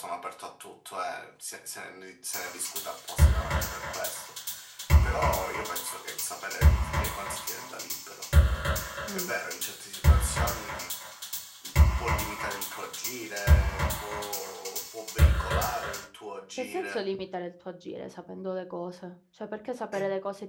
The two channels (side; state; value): both; identical; correlation 1.00